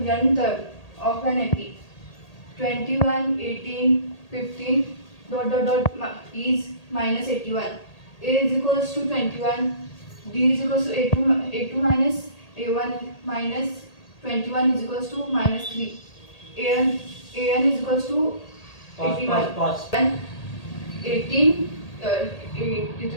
term of an epi. 21, 18, 15 is minus 81. A is equals to 21. D is equals to A2 minus A1 minus 21 is equals to minus 3. an is equals to 81. Pause. 18 is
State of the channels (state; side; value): late; right; 1.8 ms